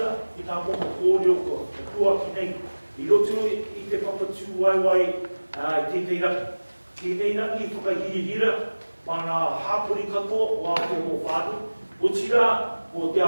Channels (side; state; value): both; inverted; correlation -1.00